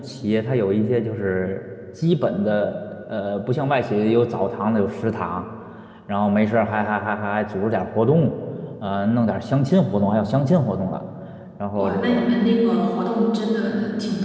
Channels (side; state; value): both; identical; correlation 1.00